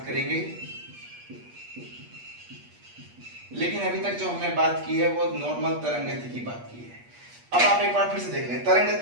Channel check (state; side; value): late; left; 8.4 ms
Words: करेंगे, लेकिन अभी तक जो हमने बात की है वो नॉर्मल तरंग गति की बात की है। अब आप एक बार फिर से देख लें, तरंग